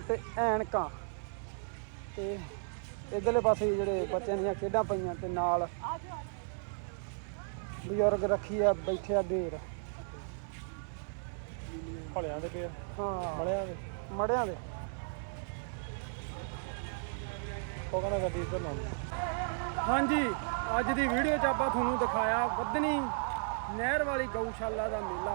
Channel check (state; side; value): silent; left; 55 dB below the other